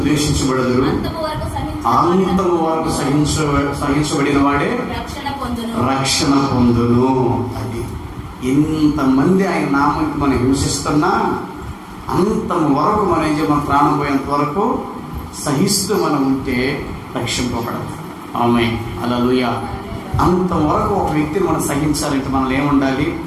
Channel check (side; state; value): both; identical; correlation 1.00